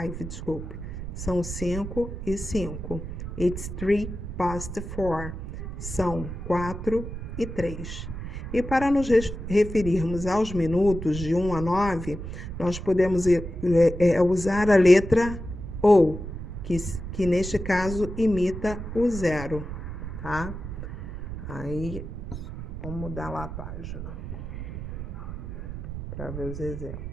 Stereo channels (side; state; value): right; noise; rumble, 8 dB below the sound